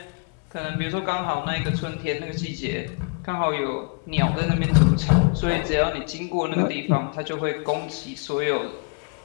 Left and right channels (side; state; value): right; quieter; 36.3 dB